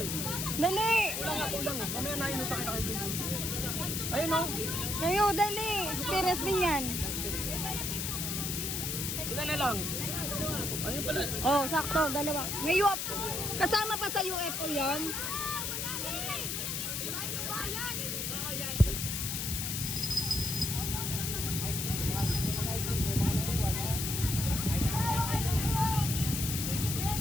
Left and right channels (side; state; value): left; noise; hiss, 2 dB below the sound